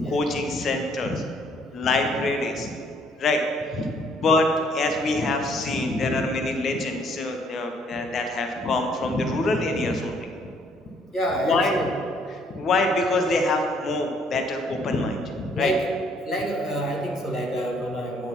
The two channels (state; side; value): normal; both; correlation 0.64